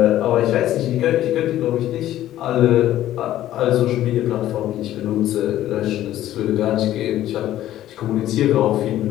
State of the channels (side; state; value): right; quieter; 13.2 dB